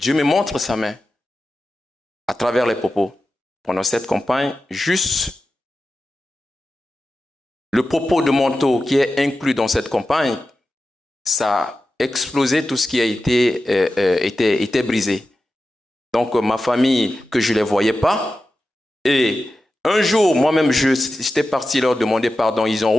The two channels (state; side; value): normal; both; correlation 0.92